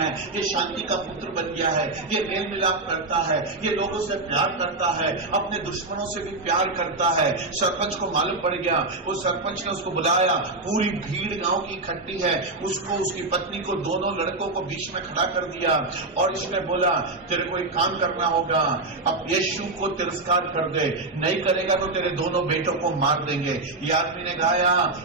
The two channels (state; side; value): quieter; left; 3.2 dB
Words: ये शांति का पुत्र बन गया है, ये मेल मिलाप करता है, ये लोगों से प्यार करता है, अपने दुश्मनों से भी प्यार करता है। सरपंच को मालूम पड़ गया, उस सरपंच ने उसको बुलाया, पूरी भीड़ गांव की इकट्ठी है, उसको, उसकी पत्नी को, दोनों लड़कों को बीच में खड़ा कर दिया और इसने बोला, तेरे को एक काम करना होगा, अब यीशु को तिरस्कार कर दे, नहीं करेगा तो तेरे दोनों बेटों को मार देंगे। ये आदमी ने गाया,